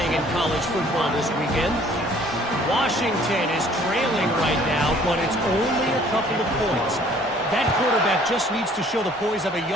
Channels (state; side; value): normal; both; correlation 0.56